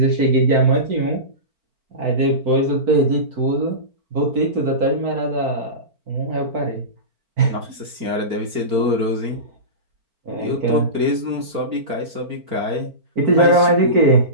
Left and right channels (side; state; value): left; late; 4.4 ms